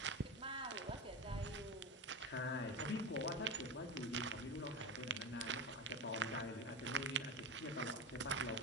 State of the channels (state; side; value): normal; both; correlation 0.21